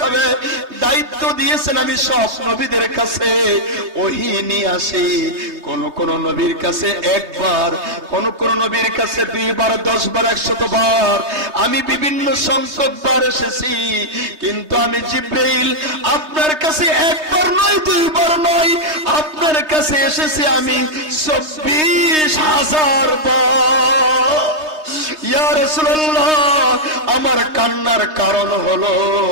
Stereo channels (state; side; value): late; left; 3.2 ms